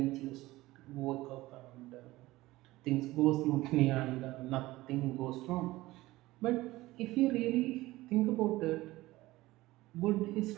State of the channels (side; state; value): left; quieter; 18.3 dB